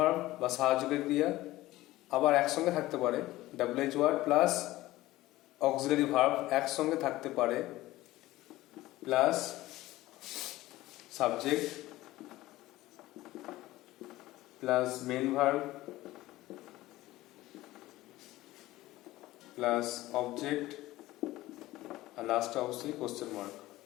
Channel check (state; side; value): quieter; right; 17.2 dB